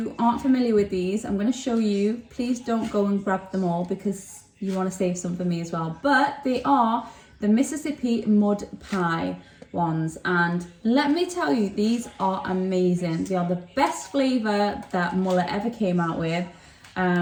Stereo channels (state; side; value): identical; both; correlation 1.00